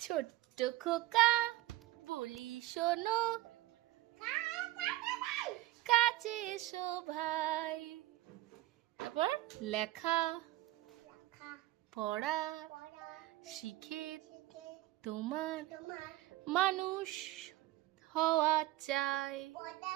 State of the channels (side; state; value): left; quieter; 16.9 dB